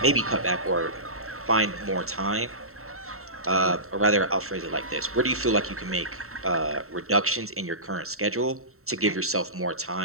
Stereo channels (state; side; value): late; left; 0.63 ms